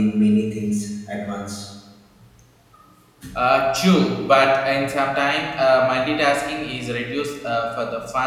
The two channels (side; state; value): both; identical; correlation 1.00